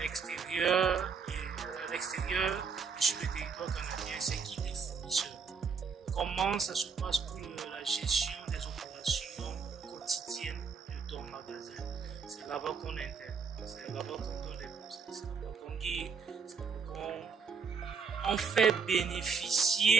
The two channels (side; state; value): left; quieter; 5.7 dB